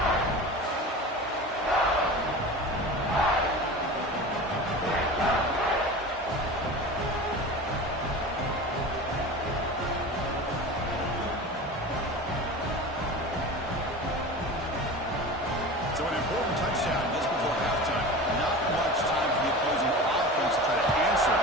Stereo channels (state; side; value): normal; both; correlation 0.33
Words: So an important touchdown just before halftime. Not much time for the opposing offense to try to answer